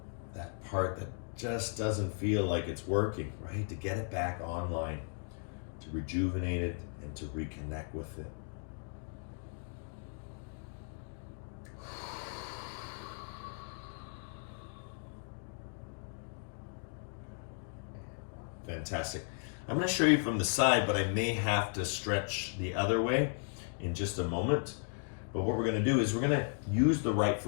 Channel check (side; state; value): right; silent; 54 dB below the other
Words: that part that just doesn't feel like it's working, right? To get it back online, to rejuvenate it and to reconnect with it. Fantastic. I'm going to show you from the side, but I may have to stretch the other way in just a moment. But what we're going to do is we're going to use the right